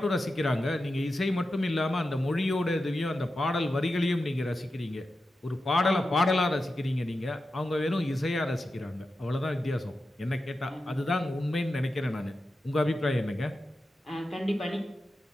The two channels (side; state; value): both; normal; correlation 0.91